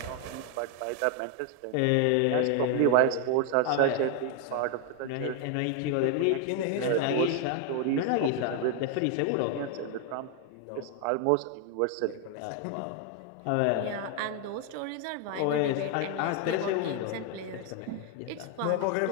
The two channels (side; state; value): both; different; correlation 0.00